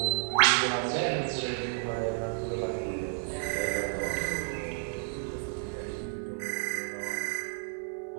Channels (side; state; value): left; silent; 56 dB below the other